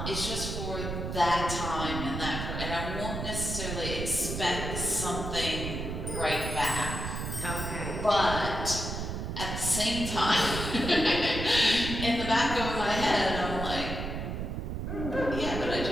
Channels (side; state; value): right; noise; rumble, 4 dB below the sound